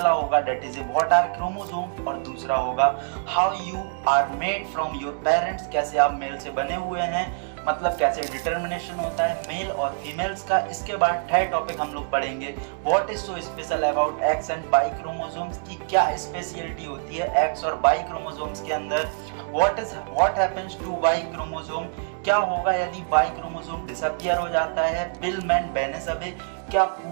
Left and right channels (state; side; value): silent; left; 62 dB below the other